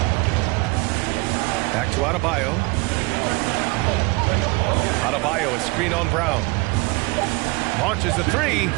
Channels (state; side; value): quieter; left; 24.7 dB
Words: Back to Adebayo. Adebayo, a screen on Brown. Launches the three.